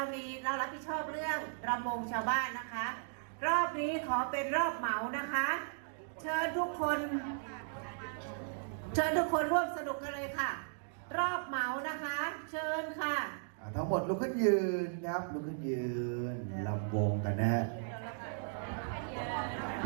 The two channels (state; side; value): silent; left; digital silence